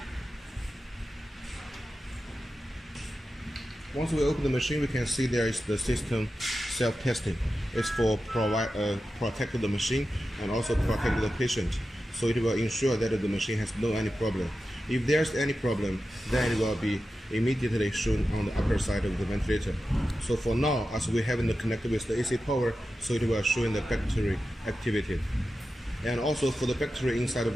Once we open the machine, we can see there is the system self-testing. It's for protect the machine and also protect the patient. So it will ensure that the machine has no any problem. If there's any problem, then it will be immediately shown on the upper side of the ventilator. So for now, as we haven't connected with the AC power, so it will show in the battery activity. And also for the battery inside the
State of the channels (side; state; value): both; normal; correlation 0.92